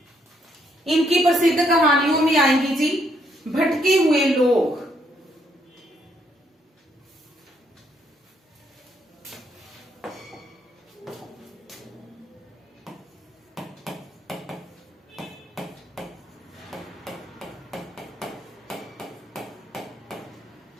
इनकी प्रसिद्ध कहानियों में आएंगी जी भटके हुए लोग,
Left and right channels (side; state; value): both; normal; correlation 0.72